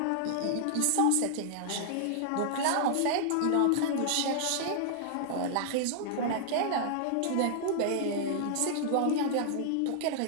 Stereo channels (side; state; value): both; different; correlation -0.01